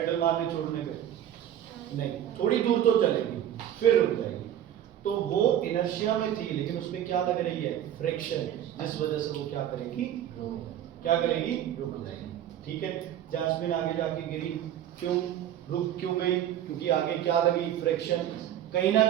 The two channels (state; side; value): quieter; left; 11.1 dB